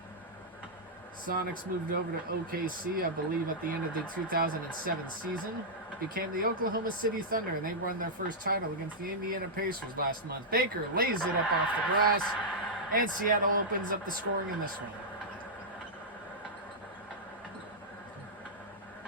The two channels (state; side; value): normal; both; correlation -0.08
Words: Sonics moved over to OKC, I believe, at the end of the 2007 season. Became the Oklahoma City Thunder, and they won their first title against the Indiana Pacers last month. Baker lays it up off the glass, and Seattle opens up the scoring in this one.